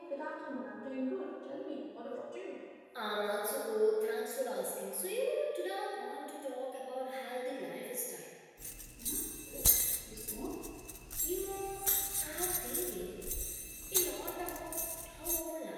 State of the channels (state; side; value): identical; both; correlation 1.00